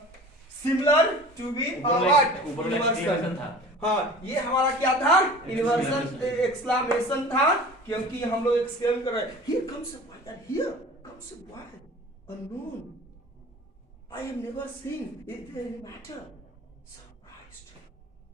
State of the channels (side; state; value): both; normal; correlation 0.41